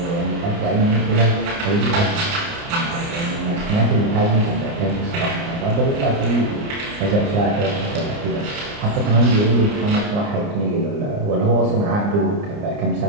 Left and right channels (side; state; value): left; late; 29 ms